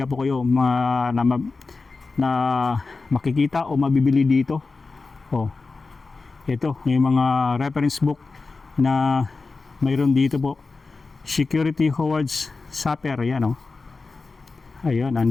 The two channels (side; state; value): right; quieter; 4.0 dB